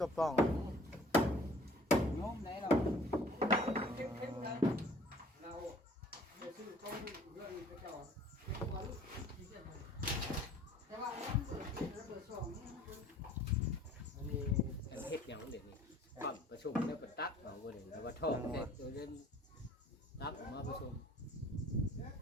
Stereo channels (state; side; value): normal; both; correlation 0.53